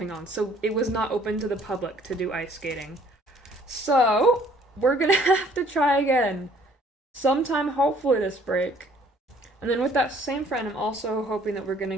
on, so it was not open to the public to do ice skating. So, we're gonna have to try again sometime, hopefully, this break. And then with that same friend, I'm also hoping that we're gonna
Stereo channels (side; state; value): both; normal; correlation 0.58